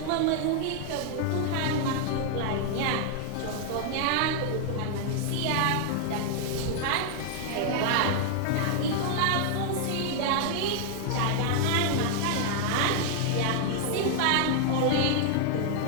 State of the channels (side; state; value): both; different; correlation 0.00